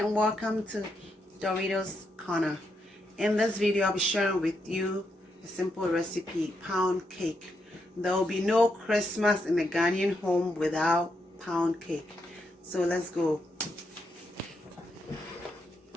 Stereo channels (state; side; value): normal; both; correlation 0.81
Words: welcome to Doritos Corner. In this video I'll be sharing with you a simple recipe, pound cake. There will be no Christmas in the Ghanaian home without pound cake. So let's go.